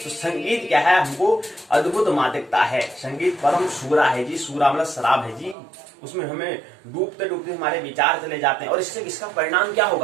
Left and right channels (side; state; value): left; drops out; at 5.6 s